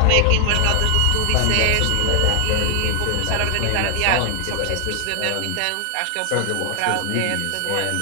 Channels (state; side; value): different; both; correlation 0.00